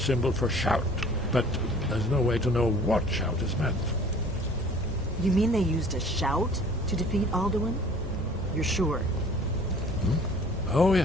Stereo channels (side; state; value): both; normal; correlation 0.50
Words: for shout. But there's no way to know what shout is meant. You mean they used a shout to defeat Alduin? You're sure? Oh,